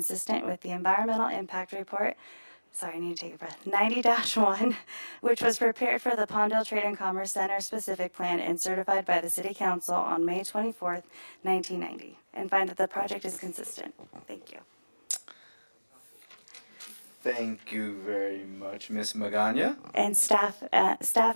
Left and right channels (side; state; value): both; inverted; correlation -1.00